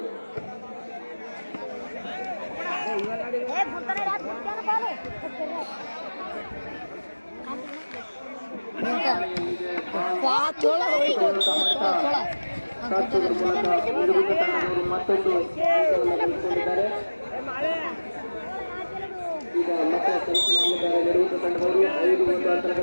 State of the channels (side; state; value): both; inverted; correlation -1.00